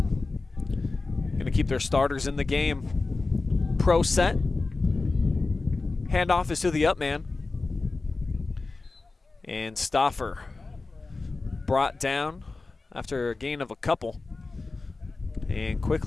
Going to keep their starters in the game. Pro set. Handoff is to the up man. And Stauffer brought down after a gain of a couple. And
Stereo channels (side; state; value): right; quieter; 3.7 dB